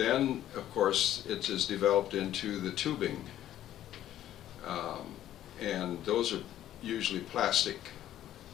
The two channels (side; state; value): right; quieter; 12.3 dB